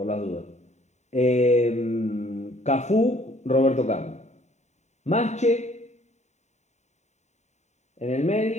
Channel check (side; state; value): right; late; 0.34 ms